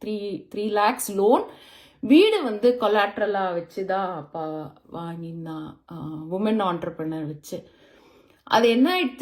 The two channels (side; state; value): both; identical; correlation 1.00